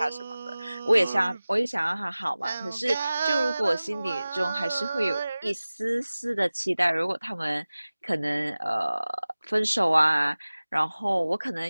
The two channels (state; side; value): inverted; both; correlation -0.98